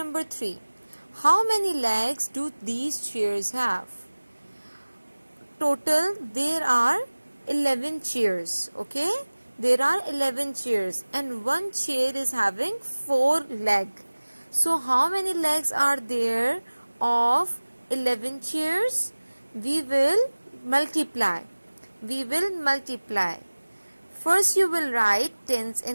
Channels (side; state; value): both; inverted; correlation -1.00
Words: 3. How many legs do these chairs have? Total there are 11 chairs. Okay, there are 11 chairs and one chair is having 4 legs. So how many legs are there of 11 chairs? We will multiply. First you will write tens